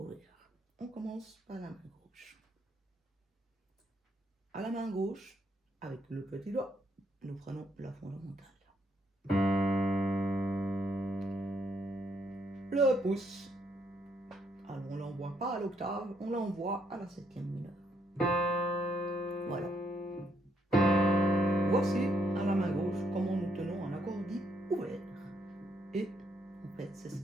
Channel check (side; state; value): both; normal; correlation 0.74